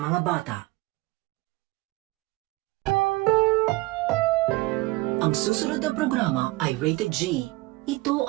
bata. Ang susunod na programa ay rated G. Ito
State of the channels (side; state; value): left; quieter; 21.0 dB